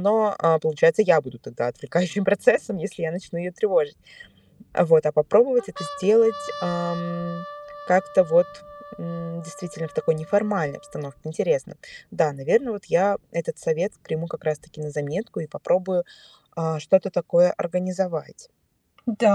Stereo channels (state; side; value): identical; both; correlation 1.00